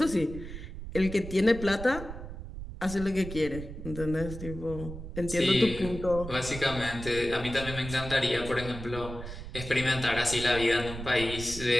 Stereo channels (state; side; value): noise; right; rumble, 10 dB below the sound